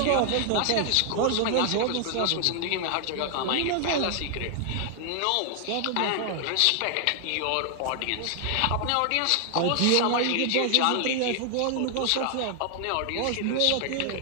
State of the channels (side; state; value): both; different; correlation 0.00